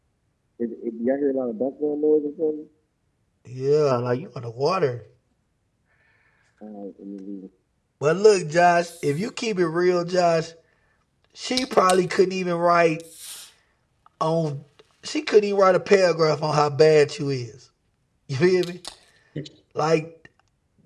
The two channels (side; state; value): both; identical; correlation 1.00